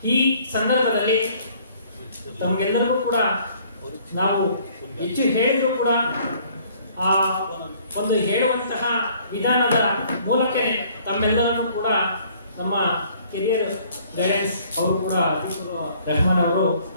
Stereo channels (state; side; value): inverted; both; correlation -0.59